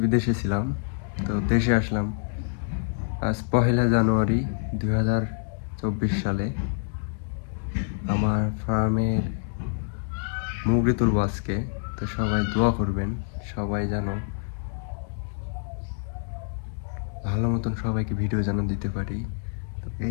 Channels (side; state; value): right; silent; digital silence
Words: বিদেশে ছিলাম, তো দেশে আসলাম আজ 1 জানুয়ারি 2024 সালে। আমার ফার্মের মুরগি তুলবো আজকে, তো সবাই দোয়া করবেন, সবাই যেন ভালো মতন সবাইকে ভিডিও যেন দিতে পারি। তো